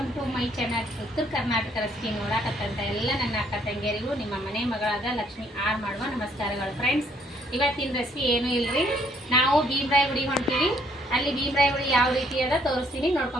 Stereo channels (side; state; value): both; normal; correlation 0.67